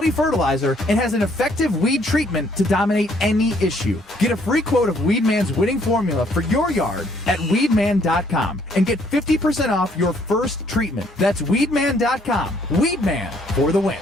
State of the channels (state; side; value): normal; both; correlation 0.66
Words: fertilizer, and has an effective weed treatment to dominate any issue. Get a free quote of Weedman's winning formula for your yard at weedman.com and get 50% off your first treatment. That's weedman.com. Weedman for the win.